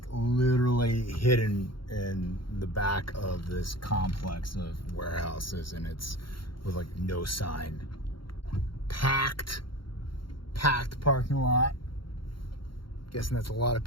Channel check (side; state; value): right; late; 0.73 ms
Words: literally hidden in the back of this complex of warehouses, and it's with like no sign. Packed parking lot. Guessing that's a lot of